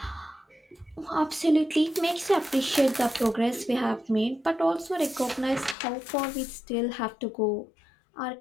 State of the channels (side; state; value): right; drops out; at 5.8 s